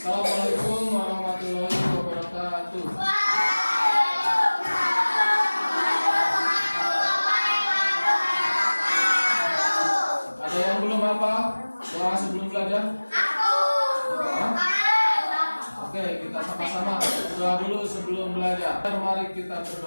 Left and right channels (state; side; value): inverted; both; correlation -1.00